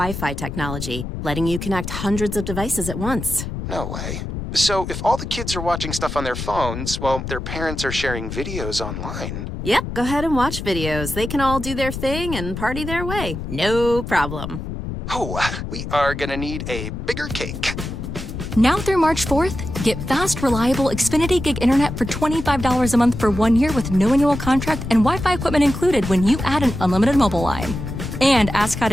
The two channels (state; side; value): noise; left; rumble, 6 dB below the sound